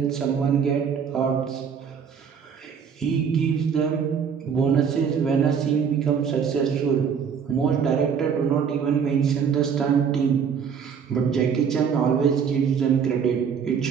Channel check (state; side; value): quieter; left; 7.0 dB